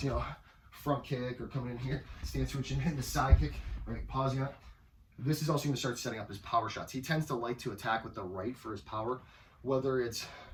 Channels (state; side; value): identical; both; correlation 1.00